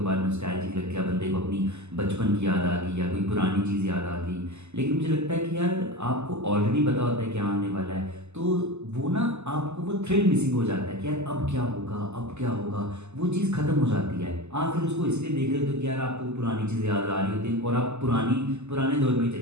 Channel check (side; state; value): left; late; 0.82 ms